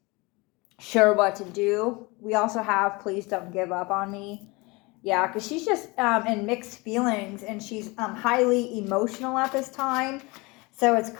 sure what to do. We also have Please Don't Give Up on Me. Yeah, because she's just in mixed feelings and she's highly emotional at this time. So it's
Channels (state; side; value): quieter; right; 25.2 dB